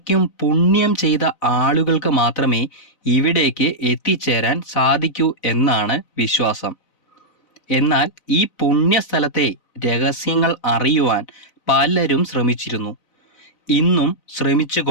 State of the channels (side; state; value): right; late; 4.0 ms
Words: പുണ്യം ചെയ്ത ആളുകൾക്ക് മാത്രമേ ഇവിടേക്ക് എത്തിച്ചേരാൻ സാധിക്കൂ എന്നാണ് വിശ്വാസം. എന്നാൽ ഈ പുണ്യസ്ഥലത്തെ രഹസ്യങ്ങൾ അറിയുവാൻ പലരും ശ്രമിച്ചിരുന്നു, ഇന്നും